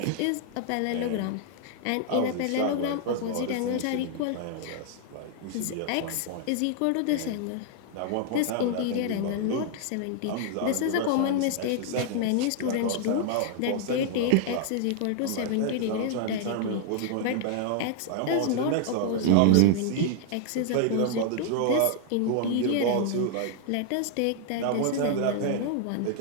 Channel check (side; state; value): both; different; correlation 0.00